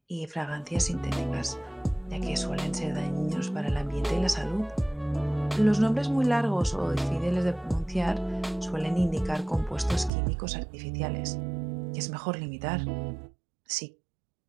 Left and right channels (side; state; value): left; drops out; at 10.1 s